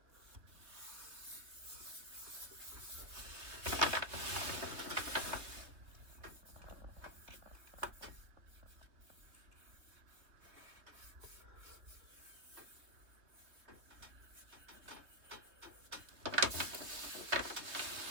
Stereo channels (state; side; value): late; left; 3.2 ms